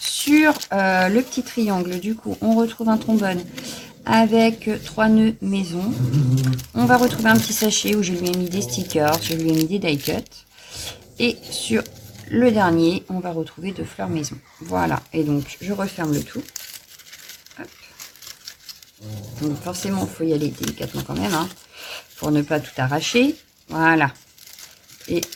le petit triangle, du coup, on retrouve un trombone avec 3 nœuds maison. On va retrouver un petit sachet où je lui ai mis des stickers, je lui ai mis des die cuts. Et sur le dernier, on va retrouver 2 fleurs maison. Voilà, et donc je referme le tout. Hop. Donc forcément, il faut y aller délicatement quand même, hein, pour ne pas tout arracher. Voilà. Et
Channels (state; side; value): identical; both; correlation 1.00